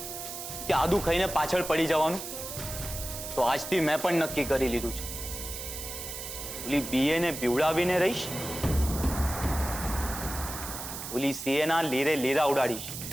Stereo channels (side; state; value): right; noise; hiss, 8 dB below the sound